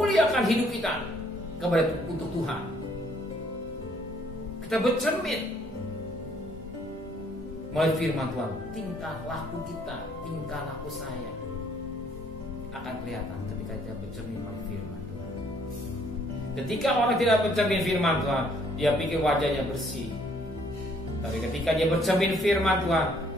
hidup kita kepada untuk Tuhan. Kita bercermin melalui firman Tuhan. Tingkah laku kita, tingkah laku saya akan kelihatan ketika kita bercermin melalui firman Tuhan. Ketika orang tidak bercermin firman Tuhan, dia pikir wajahnya bersih. Tapi ketika dia bercermin firman Tuhan,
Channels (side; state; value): both; normal; correlation 0.64